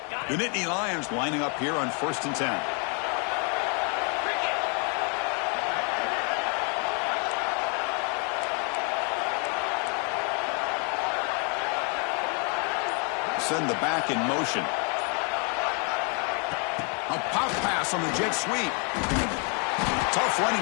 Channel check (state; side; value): quieter; right; 37.1 dB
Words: The Nittany Lions lining up here on first and 10. Send the back in motion. A pop pass on the jet sweep. Tough running